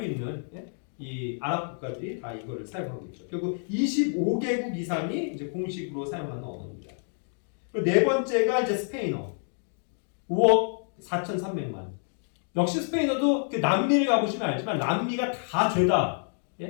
있는 이 아랍 국가들이 다 이거를 사용하고 있죠. 결국 25개국 이상이 이제 공식으로 사용하는 언어입니다. 그리고 4번째가 이제 스페인어. 5억 4,300만. 역시 스페인어도 남미를 가보시면 알지만 남미가 다 죄다.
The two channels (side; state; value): right; silent; 59 dB below the other